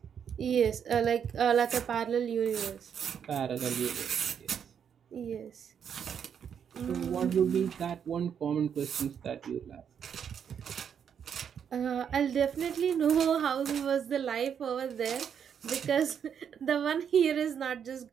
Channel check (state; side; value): quieter; left; 7.9 dB